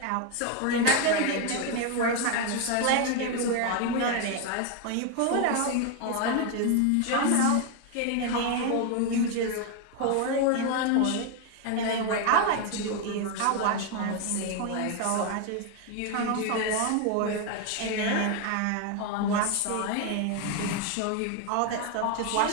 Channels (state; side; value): different; both; correlation 0.01